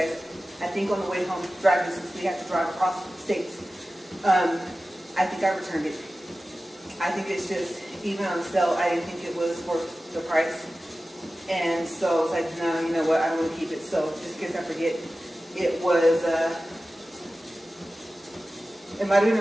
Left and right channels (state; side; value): normal; both; correlation 0.95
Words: I think on the way home driving, since we have to drive across states, I think I returned it. I think it's just, even on sale, I didn't think it was worth the price. And so I was like, no, you know what, I don't want to keep it. So just in case I forget, it was, it might have been